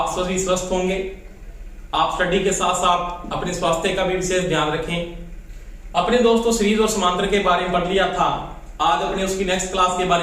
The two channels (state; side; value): identical; both; correlation 1.00